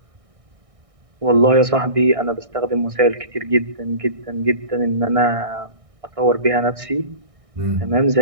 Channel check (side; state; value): left; late; 1.6 ms